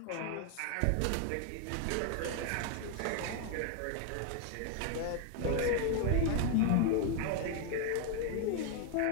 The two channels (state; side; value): different; both; correlation 0.00